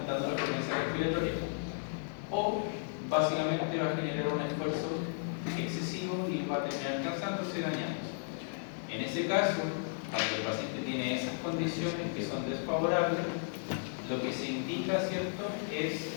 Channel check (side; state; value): right; silent; digital silence